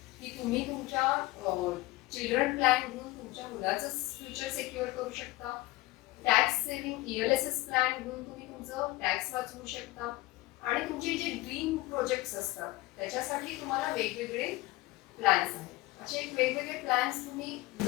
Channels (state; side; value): quieter; right; 19.6 dB